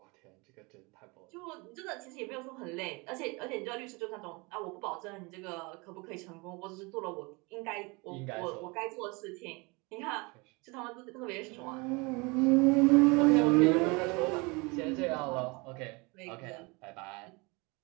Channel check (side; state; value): left; quieter; 27.4 dB